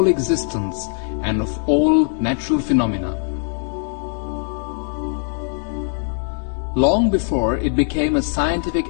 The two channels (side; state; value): right; silent; 65 dB below the other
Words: existence and of all natural phenomena. Long before it became a